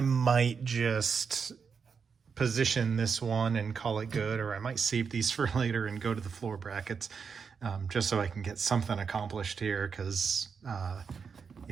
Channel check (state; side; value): quieter; left; 5.9 dB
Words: might just position this one and call it good, or I might save these for later and go to the floor brackets, just so I can get something accomplished here, because